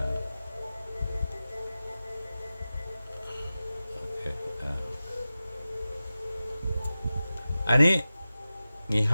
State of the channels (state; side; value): inverted; both; correlation -0.94